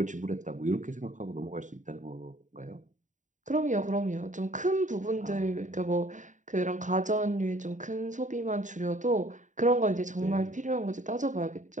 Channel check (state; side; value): late; left; 0.36 ms